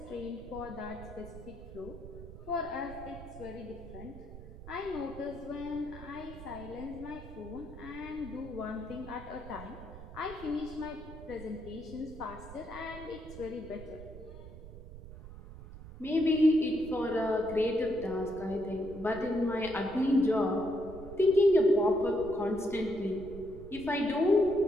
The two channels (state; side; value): noise; right; rumble, 14 dB below the sound